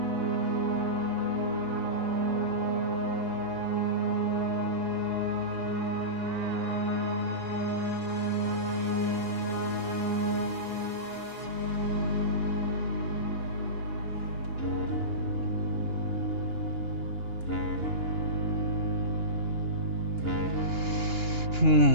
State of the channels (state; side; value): late; left; 2.9 ms